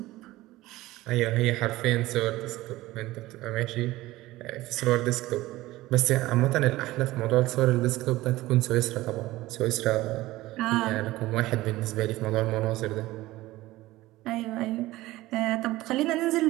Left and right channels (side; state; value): left; quieter; 17.7 dB